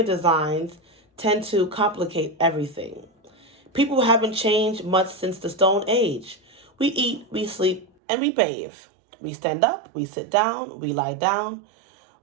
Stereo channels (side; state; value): left; drops out; at 7.9 s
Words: designs tend to complicate everything. People haven't changed much since the Stone Age. We eat, we sleep, and we bathe. We stand up, we sit down, we lie down.